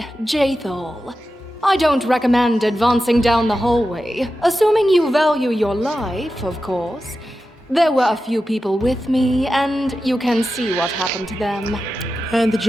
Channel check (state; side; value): normal; both; correlation 0.92